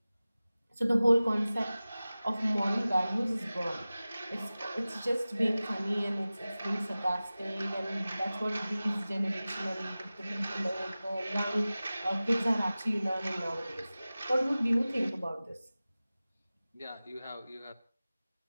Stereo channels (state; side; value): inverted; both; correlation -0.97